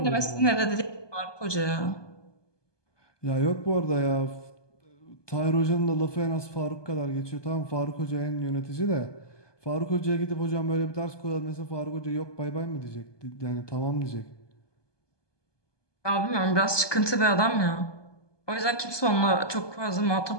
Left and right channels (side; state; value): right; late; 1.2 ms